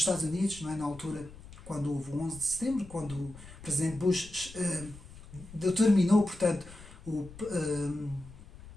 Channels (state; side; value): noise; left; rumble, 18 dB below the sound